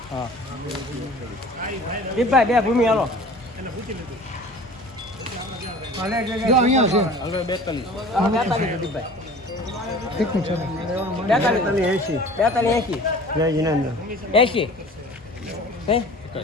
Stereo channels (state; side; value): normal; both; correlation 0.43